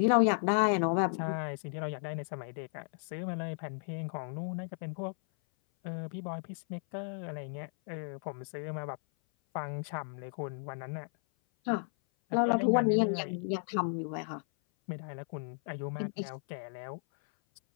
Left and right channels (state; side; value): silent; right; 55 dB below the other